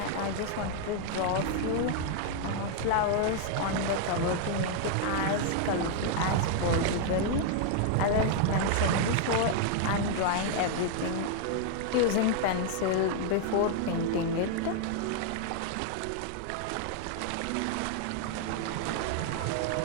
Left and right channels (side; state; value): both; different; correlation 0.00